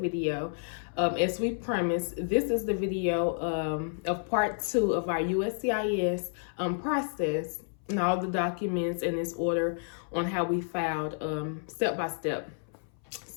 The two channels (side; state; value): right; silent; 58 dB below the other